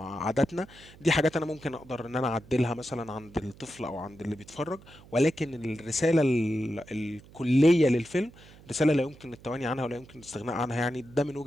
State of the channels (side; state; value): right; noise; hum, 22 dB below the sound